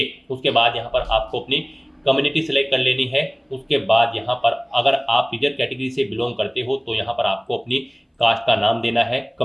उसके बाद यहाँ पर आपको अपनी कम्युनिटी सेलेक्ट कर लेनी है। उसके बाद यहाँ पर अगर आप रिजर्व कैटेगरी से बिलोंग करते हो तो यहाँ पर आपको अपनी कास्ट का नाम देना है,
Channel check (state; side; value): identical; both; correlation 1.00